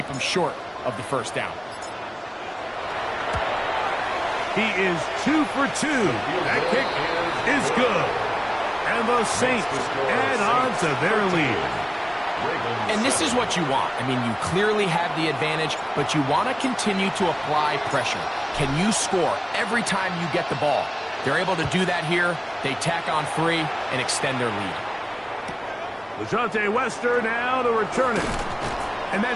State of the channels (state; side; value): identical; both; correlation 1.00